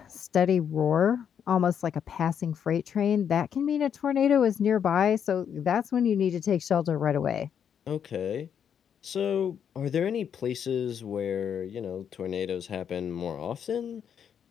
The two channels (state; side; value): quieter; right; 8.2 dB